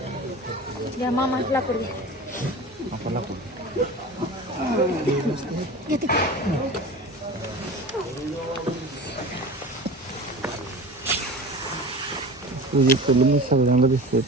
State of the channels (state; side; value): normal; both; correlation 0.34